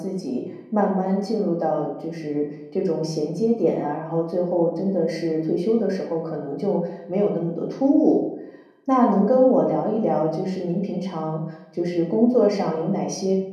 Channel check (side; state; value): both; identical; correlation 1.00